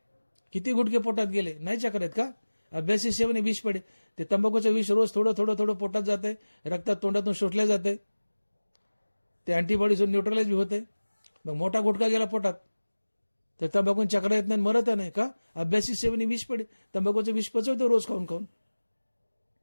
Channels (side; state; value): both; inverted; correlation -1.00